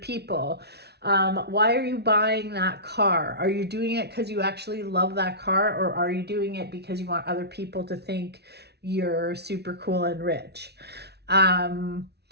Why are you buying that car? Are you doing it because you actually love that car? Or are you doing it because you want other people to think you're super cool and rich?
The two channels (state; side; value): late; left; 0.49 ms